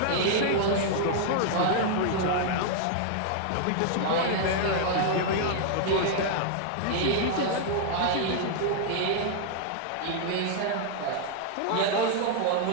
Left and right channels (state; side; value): different; both; correlation -0.01